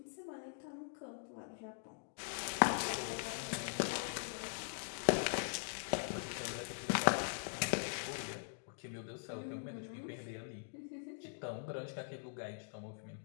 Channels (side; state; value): right; silent; digital silence